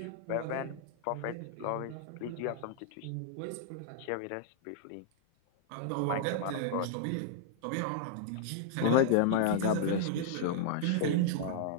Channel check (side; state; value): both; different; correlation -0.01